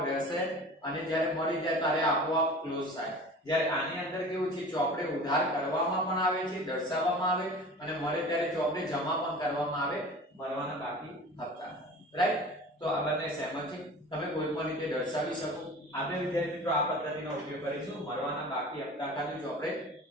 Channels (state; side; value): normal; both; correlation 0.39